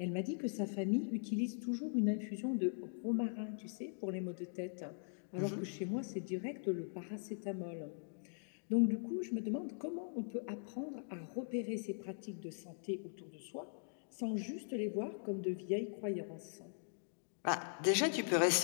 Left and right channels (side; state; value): right; silent; digital silence